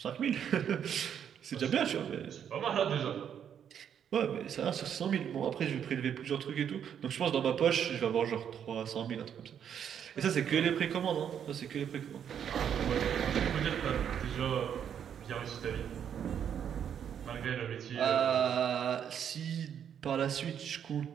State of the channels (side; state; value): left; quieter; 8.6 dB